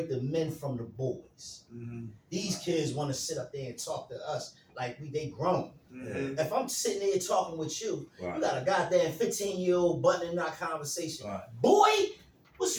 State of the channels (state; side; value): identical; both; correlation 1.00